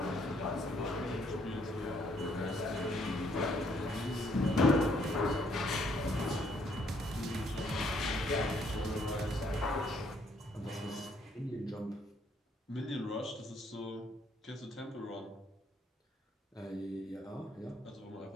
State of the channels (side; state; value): both; normal; correlation 0.68